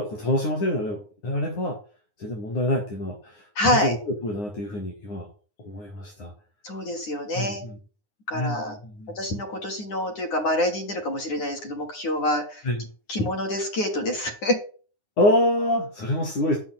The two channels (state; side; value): late; right; 9.7 ms